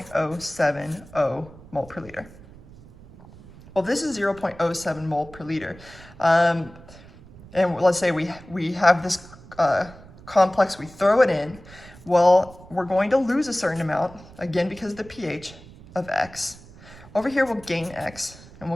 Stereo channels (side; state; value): right; noise; rumble, 20 dB below the sound